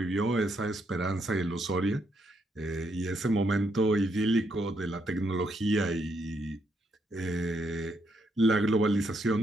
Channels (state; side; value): normal; both; correlation 0.76